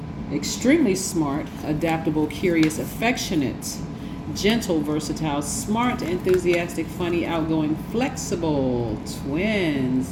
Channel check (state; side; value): identical; both; correlation 1.00